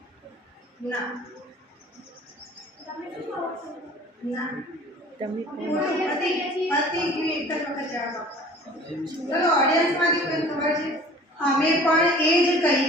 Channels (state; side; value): normal; both; correlation 0.46